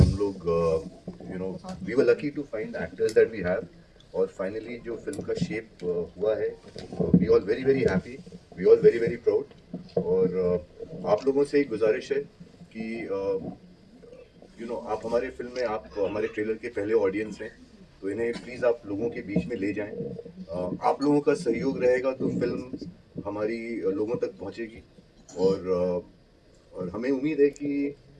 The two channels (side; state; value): both; identical; correlation 1.00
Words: लोग we were lucky to find actors that we have, और फाइनली जो फिल्म का शेप हुआ है, we all very very happy, we all very very proud. और आप लोगों से एक गुजारिश है कि आप हमारे फिल्म में, आप हमारे ट्रेलर के पहले ऑडियंस हैं, तो इन्हें प्लीज़ आप लोगों के बीच में ले जाएं। आप लोगों का सहयोग रहेगा तो फिल्म हमारी लोगों तक पहुंचेगी। और हमें उम्मीद है कि